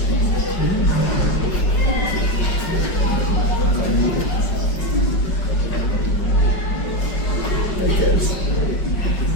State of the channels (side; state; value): right; late; 5.3 ms